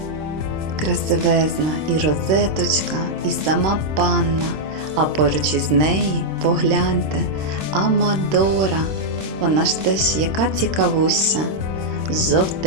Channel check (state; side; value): late; left; 26 ms